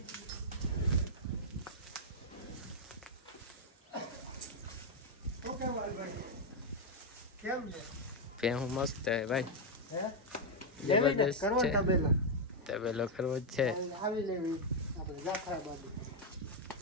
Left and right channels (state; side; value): normal; both; correlation -0.01